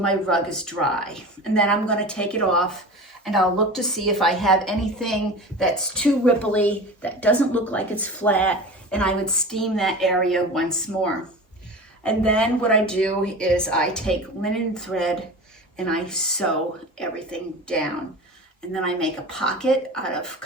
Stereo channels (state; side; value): normal; both; correlation 0.33